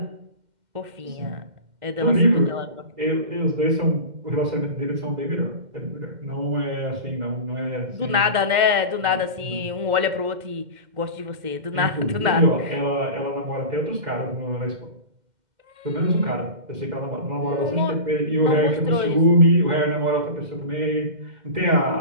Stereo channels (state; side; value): late; left; 2.1 ms